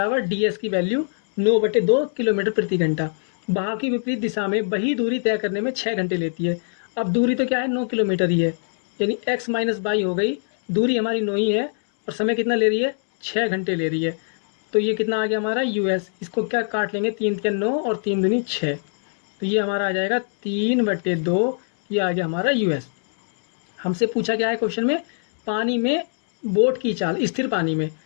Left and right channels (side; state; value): right; silent; digital silence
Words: ds की वैल्यू 9/2 किलोमीटर प्रति घंटा। बहाव की विपरीत दिशा में वही दूरी तय करने में 6 घंटे लेती है। अब दूरी तो क्या है 9 किलोमीटर ही है, यानी x माइनस बाई हो गई, दूरी हमारी 9 ही है और समय कितना ले रही है 6 घंटे ले रही है। तो ये कितना आ गया हमारा यूएस, इसको क्या काट लेंगे 3 तिया 9 और 3 दूनी 6, तो ये हमारा आ जाएगा 3/2, ये आ गया हमारा यूएस। हमसे पूछा क्या है क्वेश्चन में, पानी में बोट की चाल स्थिर पानी में